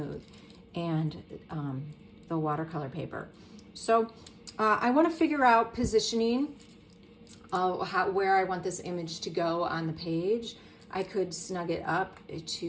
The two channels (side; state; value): both; identical; correlation 1.00